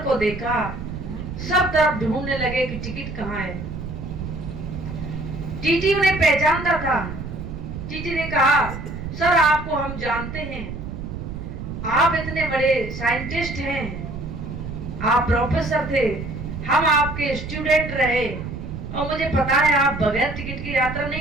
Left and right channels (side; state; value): right; noise; rumble, 8 dB below the sound